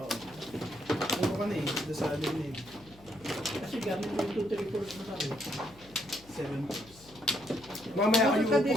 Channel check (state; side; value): noise; left; hum, 23 dB below the sound